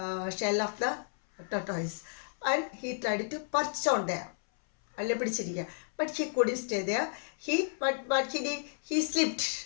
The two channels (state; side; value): silent; right; 56 dB below the other